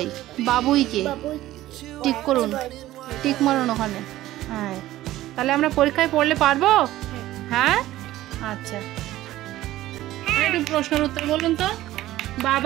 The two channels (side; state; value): left; quieter; 15.2 dB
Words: বাবুইকে। টিক করুন, টিক মারুন ওখানে। হ্যাঁ, তাহলে আমরা পরীক্ষায় পড়লে পারবো? হ্যাঁ, আচ্ছা। একটু প্রশ্নের উত্তর বলুন তো।